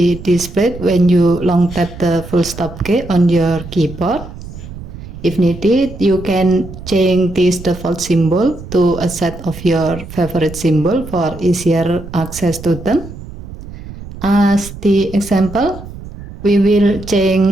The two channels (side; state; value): right; noise; rumble, 13 dB below the sound